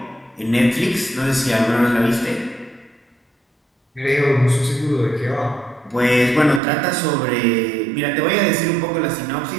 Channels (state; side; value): drops out; left; at 6.6 s